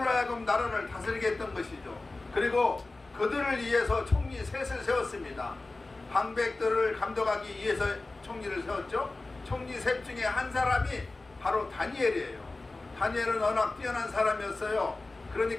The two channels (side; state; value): right; quieter; 3.2 dB